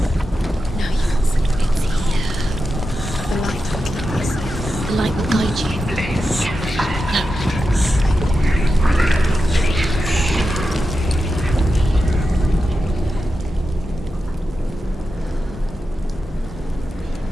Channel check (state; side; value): normal; both; correlation 0.90